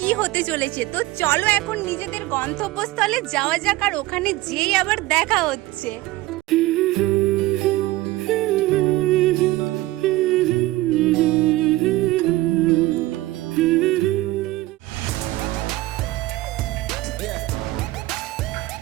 হতে চলেছে। তো চলো এখন নিজেদের গন্তব্যস্থলে যাওয়া যাক, আর ওখানে যেই আবার দেখা হচ্ছে।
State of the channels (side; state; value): left; quieter; 18.0 dB